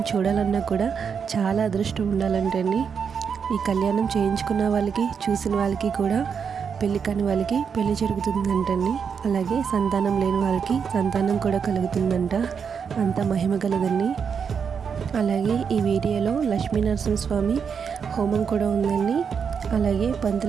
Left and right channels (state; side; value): quieter; left; 6.6 dB